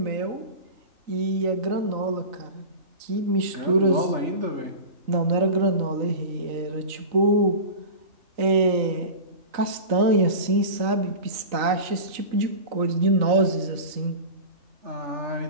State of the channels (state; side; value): late; left; 3.9 ms